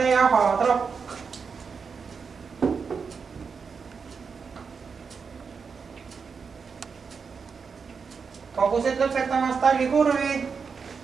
ja Haadrap. Hobused lõpetamas tallikurvi.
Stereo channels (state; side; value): quieter; left; 5.6 dB